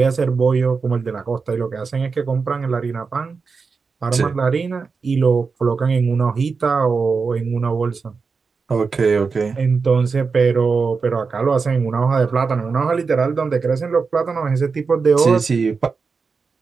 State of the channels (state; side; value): quieter; left; 4.9 dB